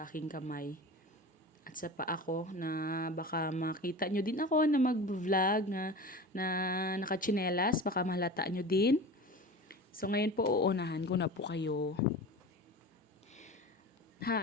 aking kamay at sa paa ko na baka makita nyo din ako na mag-vlog na nakachinelas. Baka mahalata nyo din. So, ngayon po uunahan ko na po kayo.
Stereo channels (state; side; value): normal; both; correlation 0.33